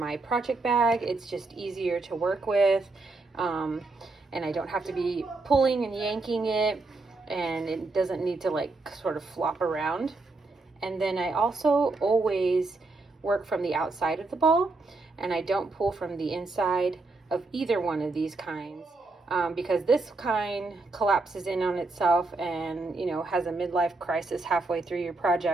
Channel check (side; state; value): left; quieter; 3.4 dB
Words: project bag, it's just easier to work with. And I don't have to be pulling and yanking it, and it doesn't need to sort of flop around. And then I also always work from the outside of the ball, and I don't pull from the inside of either one of these kinds. Because this kind collapses in on itself and, has a midlife crisis halfway through your